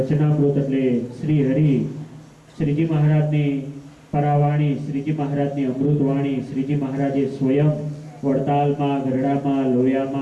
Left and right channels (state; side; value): identical; both; correlation 1.00